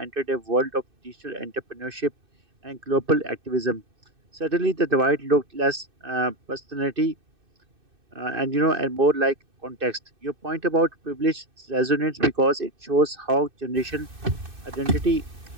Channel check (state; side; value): late; left; 2.6 ms